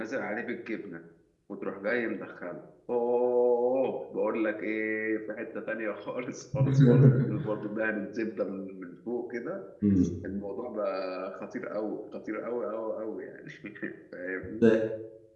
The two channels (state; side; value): identical; both; correlation 1.00